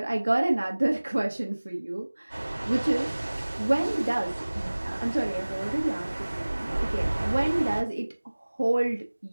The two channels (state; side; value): inverted; both; correlation -1.00